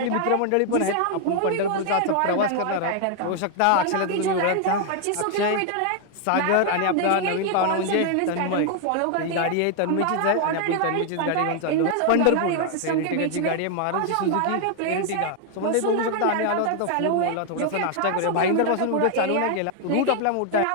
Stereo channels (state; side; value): different; both; correlation 0.00